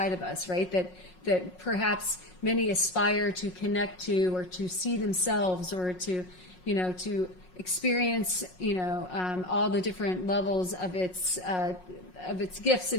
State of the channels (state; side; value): late; right; 5.5 ms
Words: of us, right? That perhaps many aspire to connect to, or to see themselves, or to experience, all the different levels of its gifts